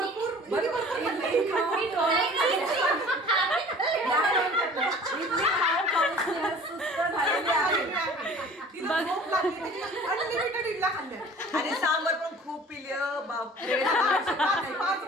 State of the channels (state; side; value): normal; both; correlation 0.47